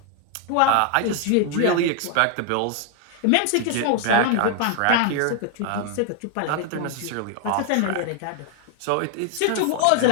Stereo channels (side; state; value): both; different; correlation 0.00